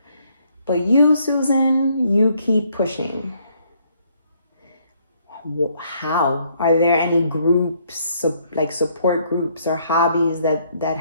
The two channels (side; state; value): both; inverted; correlation -0.68